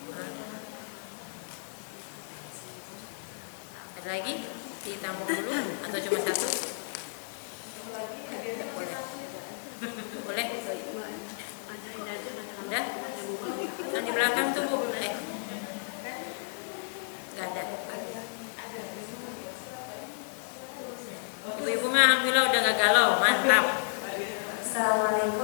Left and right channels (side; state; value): right; silent; digital silence